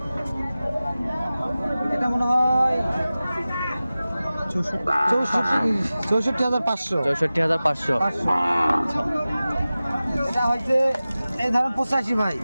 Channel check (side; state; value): both; inverted; correlation -0.96